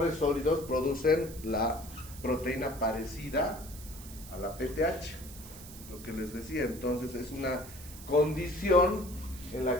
sólidos producen la proteína parecida a la PTH, lo que les decía. Entonces es una condición en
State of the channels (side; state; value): right; noise; hiss, 16 dB below the sound